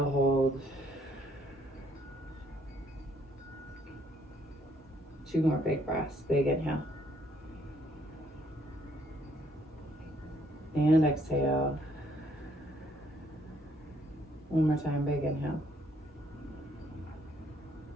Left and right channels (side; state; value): both; normal; correlation 0.67